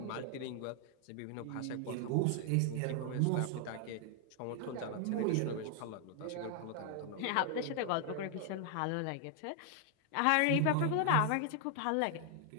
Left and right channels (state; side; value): different; both; correlation 0.00